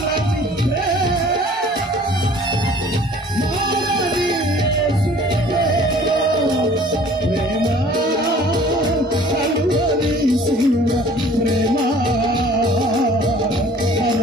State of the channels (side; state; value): both; normal; correlation 0.51